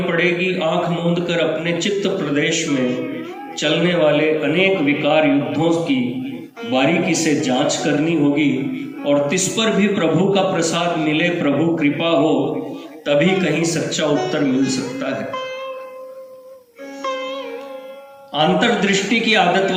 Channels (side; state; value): both; identical; correlation 1.00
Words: पड़ेगी। आंख मूंद कर अपने चित्त प्रदेश में चलने वाले अनेक विकार युद्धों की बारीकी से जांच करनी होगी और तिस पर भी प्रभु का प्रसाद मिले, प्रभु कृपा हो, तभी कहीं सच्चा उत्तर मिल सकता है। अंतर्दृष्टि की आदत